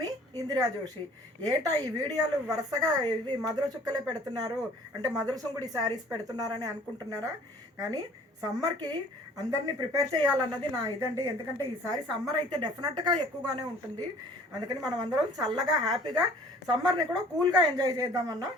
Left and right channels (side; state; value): both; normal; correlation 0.52